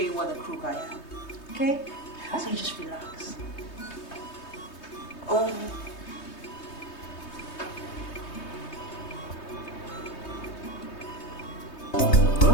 what a crook I am. Okay? So you just relax. Oh.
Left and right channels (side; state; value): right; late; 3.2 ms